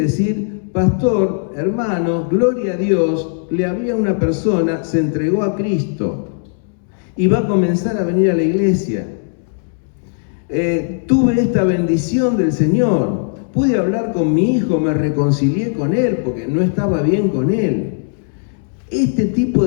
pastor, hermano, gloria a Dios, le había una persona, se entregó a Cristo y va a comenzar a venir a la iglesia. Tuve esta bendición del Señor, pude hablar con mi hijo, me reconcilié con él porque no estaba bien con él. Este tipo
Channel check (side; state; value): right; silent; 68 dB below the other